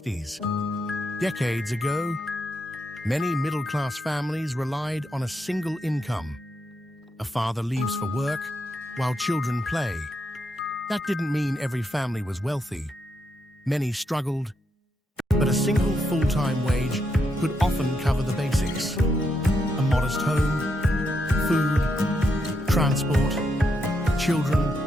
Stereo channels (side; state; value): both; normal; correlation 0.81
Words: Decades ago, many middle-class families relied on a single income. A father leaves for work while children play. That didn't mean every family was wealthy. Many struggled, but a single full-time wage could often cover the basics. A modest home, food, transport, children,